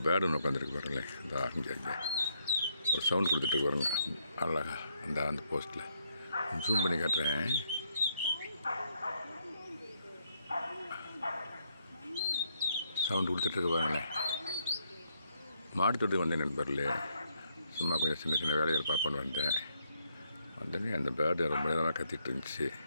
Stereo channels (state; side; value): inverted; both; correlation -0.75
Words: bird ஒன்று உட்காந்துருக்கு பாருங்களேன். இந்த இங்கே ஒரு சவுண்ட் கொடுத்துட்டு பாருங்க அழகா அந்த போஸ்ட்டில் ஜூம் பண்ணி காட்டுறேன். சவுண்டு கொடுத்துட்ருக்கு பாருங்களேன். மாடு தொட்டு வந்தேன் நண்பர்களே. சும்மா கொஞ்சம் சின்ன சின்ன வேலைகள் பார்ப்போன்னு வந்தோடனே அந்த பேர்டு ரொம்ப நேரமாக கத்திட்டு இருந்துச்சு.